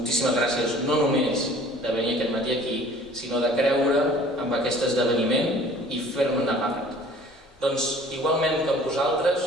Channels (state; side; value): normal; both; correlation 0.50